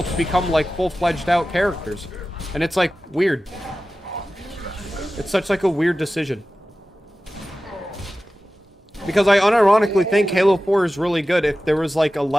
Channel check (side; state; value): both; normal; correlation 0.95